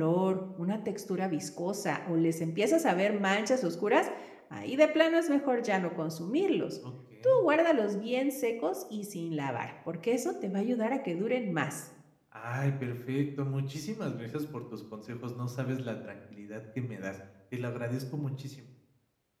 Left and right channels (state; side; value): identical; both; correlation 1.00